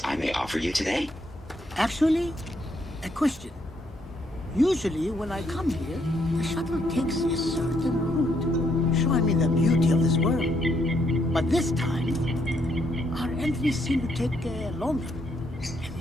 I may offer you today? Actually, a question. Usually, when I come here, the shuttle takes a certain route, showing me the beauty of this world. But this time, our entries seem to take longer, and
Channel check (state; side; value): normal; both; correlation 0.73